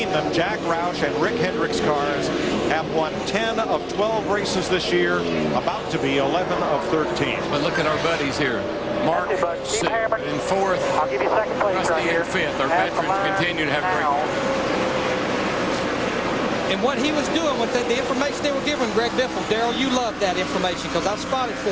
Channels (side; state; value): both; identical; correlation 1.00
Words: them, Jack Roush and Rick Hendrick's cars have won 10 of 12 races this year, about to be 11 of 13. But look at our buddies here. Mark in 4th, I'll give you second place Rusty right here. in 5th. Our veterans continue to have great. And what he was doing with the information they were giving Greg Biffle, Darrell, you love that information because I've spotted